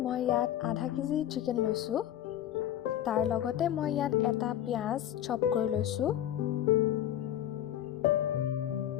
মই ইয়াত আধা কেজি চিকেন লৈছো। তাৰ লগতে মই ইয়াত এটা পিয়াজ চপ কৰি লৈছো।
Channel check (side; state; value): right; quieter; 11.6 dB